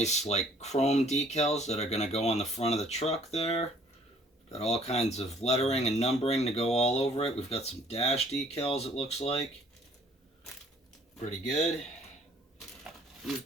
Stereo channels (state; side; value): normal; both; correlation 0.58